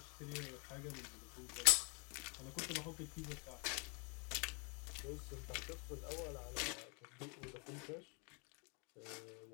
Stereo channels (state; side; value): quieter; right; 34.0 dB